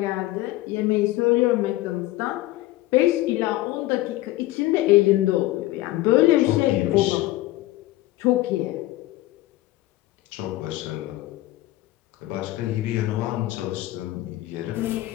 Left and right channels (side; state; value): right; quieter; 17.3 dB